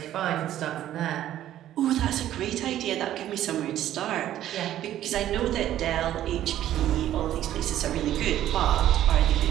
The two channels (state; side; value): quieter; left; 12.4 dB